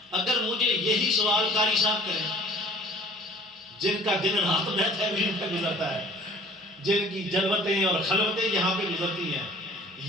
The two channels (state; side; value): normal; both; correlation 0.50